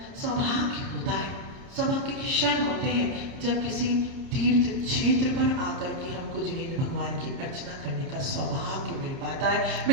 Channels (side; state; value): left; late; 30 ms